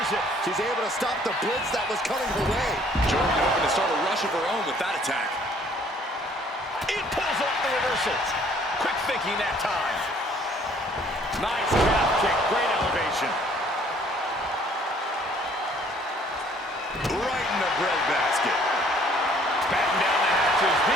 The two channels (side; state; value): both; normal; correlation 0.59